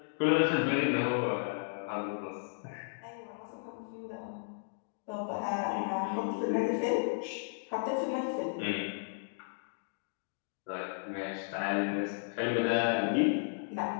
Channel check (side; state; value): right; silent; digital silence